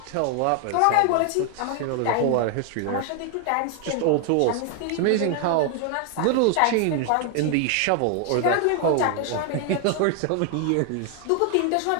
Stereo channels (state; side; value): different; both; correlation 0.00